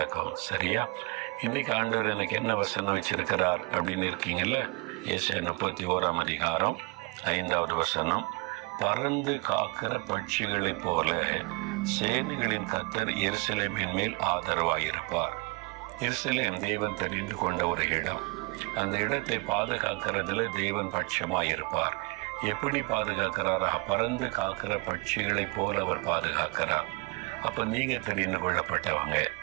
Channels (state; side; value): quieter; left; 28.8 dB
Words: சரியா? இன்றைக்கு ஆண்டவர் எனக்கு என்ன வசனம் வச்சிருக்கிறார் அப்படின்னு இருக்கீங்கல்ல. ஏசாயா 31 அதிகாரம் 5வது வசனம். பறந்து காக்கிற பட்சிகளைப் போல சேனைகளின் கர்த்தர் எருசலேமின் மேல் ஆதரவாயிருப்பார். எருசலேம் தேவன் தெரிந்து கொண்ட ஒரு இடம். அந்த இடத்தை பாதுகாக்கிறதுல தேவன் பட்சமாயிருப்பார். எப்படி பாதுகாக்கிறாரா? பறந்து காக்கிற பட்சிகளைப் போல அவர் பாதுகாக்கிறார். அப்போ நீங்கள் தெரிந்து கொள்ளப்பட்டவங்க.